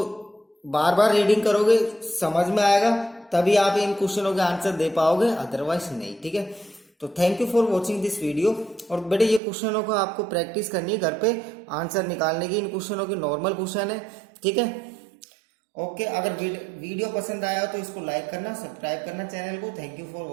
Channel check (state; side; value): drops out; left; at 9.4 s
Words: बार बार रीडिंग करोगे, समझ में आएगा, तभी आप इन क्वेश्चनों के आंसर दे पाओगे, अदरवाइज नहीं, ठीक है। तो thank you for watching this video. और बेटे ये क्वेश्चनों को आपको प्रैक्टिस करनी है घर पे आंसर निकालने की, इन क्वेश्चनों की नॉर्मल क्वेश्चन है, ठीक है। ओके, अगर वीडियो पसंद आया तो इसको लाइक करना, सब्सक्राइब करना चैनल को। Thank you for